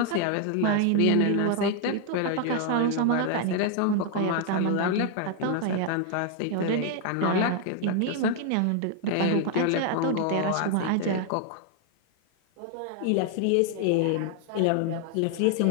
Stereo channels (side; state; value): both; different; correlation 0.00